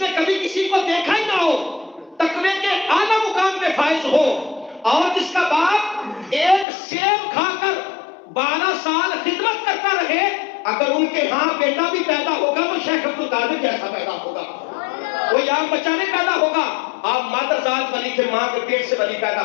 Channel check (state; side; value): drops out; right; at 6.7 s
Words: نے کبھی کسی کو دیکھا ہی نہ ہو، تقوی کے اعلیٰ مقام پہ فائز ہو، اور جس کا باپ ایک سیب کھا کر 12 سال خدمت کرتا رہے، اگر ان کے ہاں بیٹا بھی پیدا ہوگا تو شیخ عبد القادر جیسا پیدا ہوگا، کوئی عام بچہ نہیں پیدا ہوگا۔ آپ مادر ذات ولی تھے، ماں کے پیٹ سے ولی پیدا